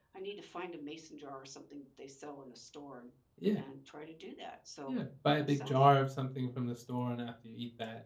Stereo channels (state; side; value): identical; both; correlation 1.00